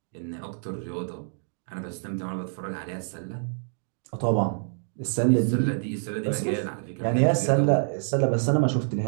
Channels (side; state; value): left; silent; digital silence